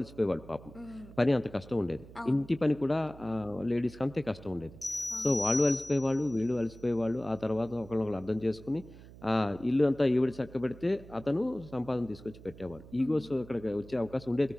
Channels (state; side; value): noise; right; hum, 18 dB below the sound